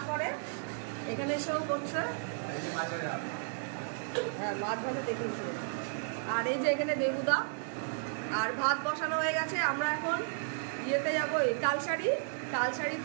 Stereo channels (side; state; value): left; silent; 55 dB below the other